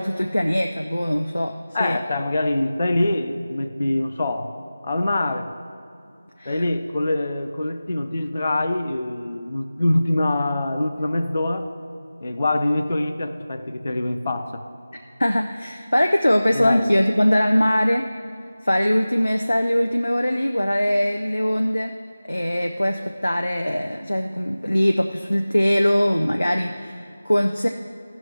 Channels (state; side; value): inverted; both; correlation -0.97